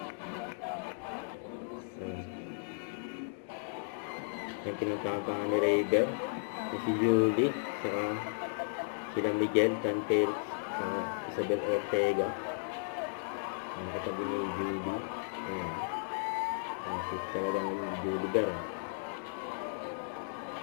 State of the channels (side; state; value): right; silent; digital silence